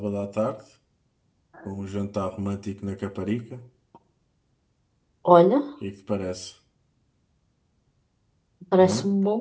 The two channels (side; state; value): both; identical; correlation 1.00